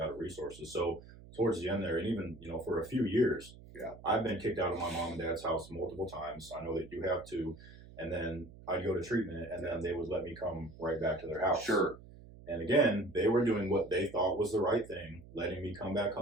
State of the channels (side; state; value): right; noise; hum, 19 dB below the sound